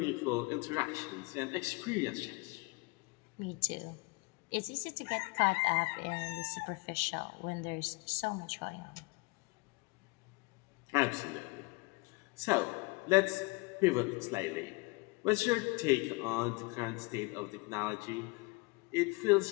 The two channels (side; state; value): right; quieter; 27.3 dB